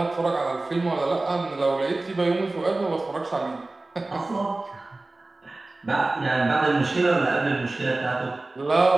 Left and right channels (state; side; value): quieter; left; 3.0 dB